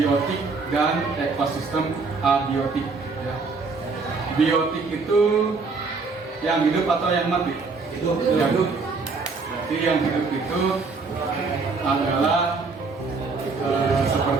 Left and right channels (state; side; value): quieter; left; 4.3 dB